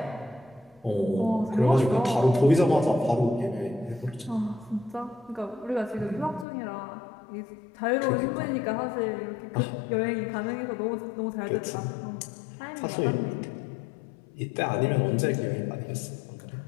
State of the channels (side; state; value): right; drops out; at 6.5 s